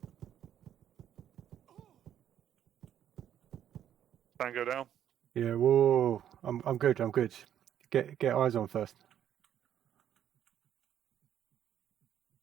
Tango down. Yeah. Whoa. I'm good. I'm good. Get eyes on first.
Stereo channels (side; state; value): left; quieter; 10.3 dB